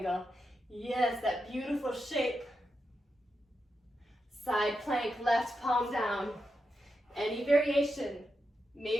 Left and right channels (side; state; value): both; normal; correlation 0.87